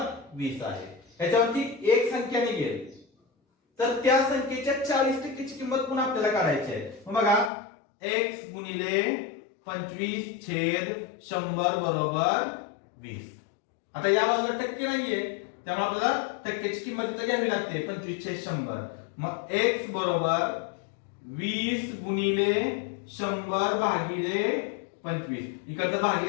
20 आहे. याच्यावरती एक संख्या निघेल तर त्या संख्येच्या 40% ची किंमत पुन्हा आपल्याला काढायची आहे. मग बघा x गुणिले 25/100 बरोबर 20. आता या बाजूला टक्के नाहीये त्यामुळे आपल्याला टक्क्याची किंमत इथे घ्यावी लागते 25/100. मग x बरोबर 20 गुणिले 100 भागिले 25. इकडचं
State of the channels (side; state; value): right; drops out; at 7.5 s